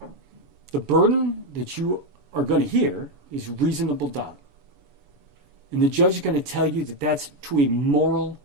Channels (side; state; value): left; late; 7.0 ms